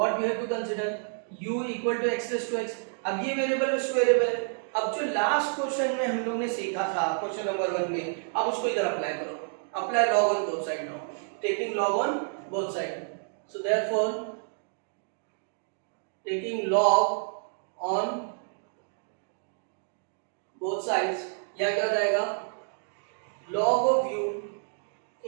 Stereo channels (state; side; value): silent; left; 58 dB below the other